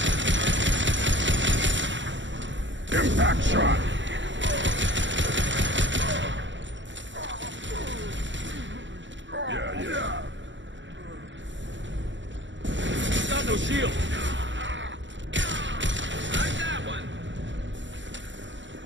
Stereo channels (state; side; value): late; left; 0.54 ms